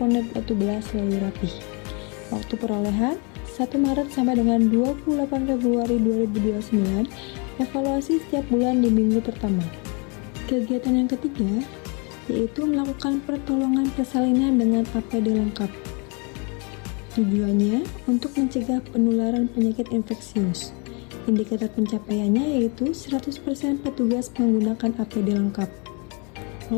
Watu Belah selalu rapih. Waktu perolehan, 1 Maret sampai dengan 28 Februari 2029, evaluasi setiap bulan di minggu pertama. Kegiatan yang ketiga, yaitu melakukan pertolongan persalinan dengan APD lengkap. Tujuannya untuk mencegah penularan penyakit infeksius. Indikator pencapaiannya yaitu 100% petugas menggunakan APD lengkap.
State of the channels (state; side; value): quieter; right; 33.2 dB